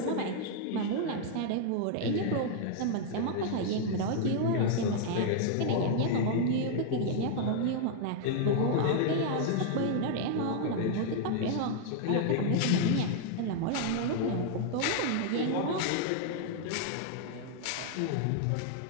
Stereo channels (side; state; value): both; different; correlation 0.00